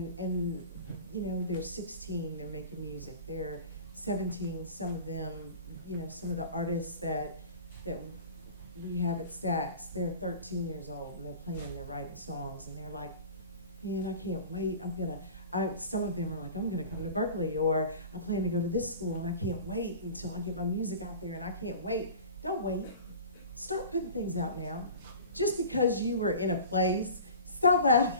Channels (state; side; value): inverted; both; correlation -0.39